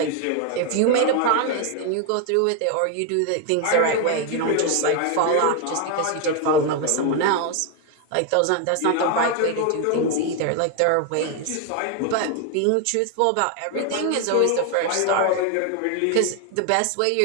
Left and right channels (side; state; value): both; different; correlation 0.01